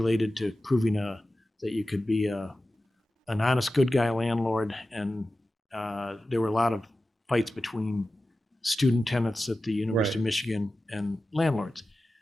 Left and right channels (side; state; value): both; normal; correlation 0.94